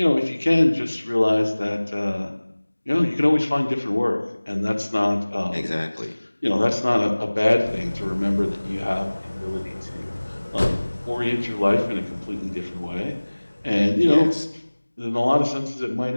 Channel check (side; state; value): both; inverted; correlation -1.00